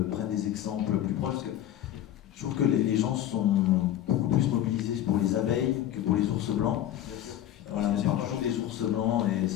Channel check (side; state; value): right; quieter; 12.0 dB